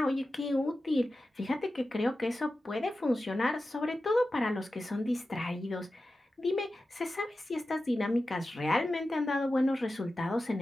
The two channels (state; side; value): normal; both; correlation 0.93